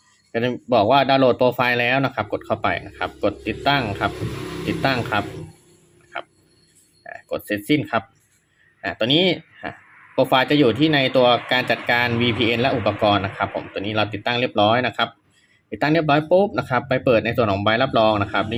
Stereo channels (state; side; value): identical; both; correlation 1.00